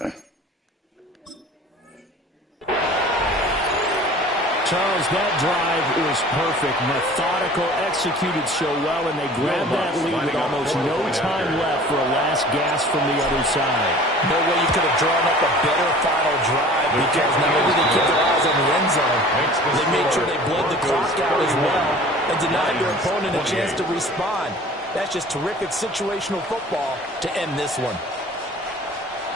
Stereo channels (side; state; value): both; normal; correlation 0.45